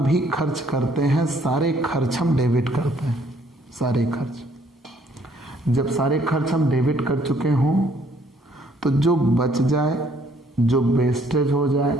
खर्च करते हैं सारे खर्च हम डेबिट करते हैं, सारे खर्च। जब सारे खर्च हम डेबिट कर चुके हों तो जो बच जाए, जो वेस्टेज हो जाए,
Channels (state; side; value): normal; both; correlation 0.64